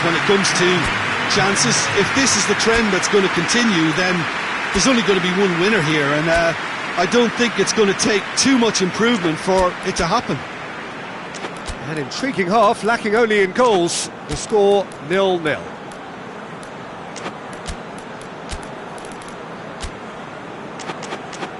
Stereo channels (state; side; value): identical; both; correlation 1.00